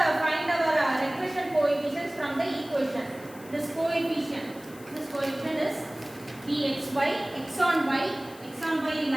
find our regression coefficients from the equation. This coefficient is bxy, x on y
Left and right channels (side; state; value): left; noise; hiss, 21 dB below the sound